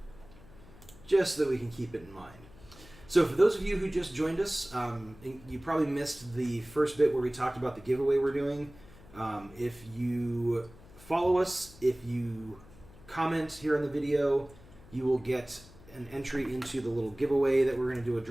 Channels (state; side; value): noise; left; hum, 22 dB below the sound